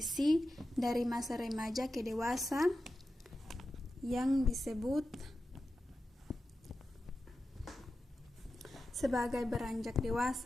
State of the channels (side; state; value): both; normal; correlation 0.92